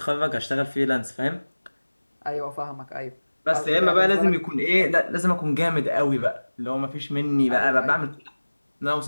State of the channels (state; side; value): inverted; both; correlation -1.00